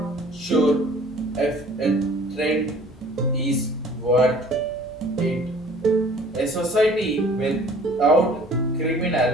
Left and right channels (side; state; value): both; normal; correlation 0.51